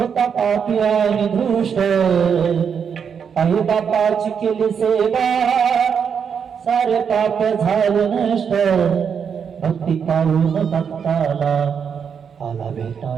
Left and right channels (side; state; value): left; quieter; 7.0 dB